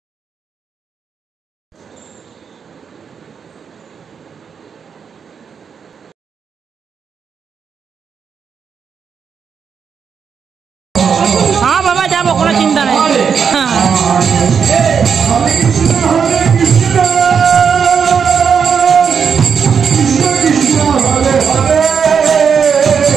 हाँ बाबा जाबो कोनो चिंता नहीं। हाँ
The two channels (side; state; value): left; quieter; 6.6 dB